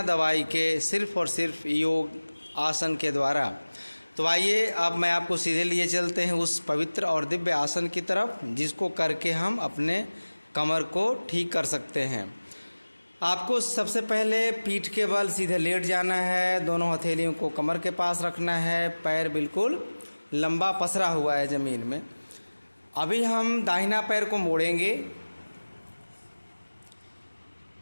दवाई के, सिर्फ और सिर्फ योग आसन के द्वारा। तो आइए अब मैं आपको सीधे लिए चलते हैं उस पवित्र और दिव्य आसन की तरफ जिसको करके हम अपने कमर को ठीक कर सकते हैं। आपको सबसे पहले पीठ के बल सीधे लेट जाना है, दोनों हथेलियों को कमर के पास रखना है, पैर बिल्कुल लंबा पसरा हुआ है ज़मीन में। अभी हम दाहिना पैर को मोड़ेंगे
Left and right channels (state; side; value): inverted; both; correlation -1.00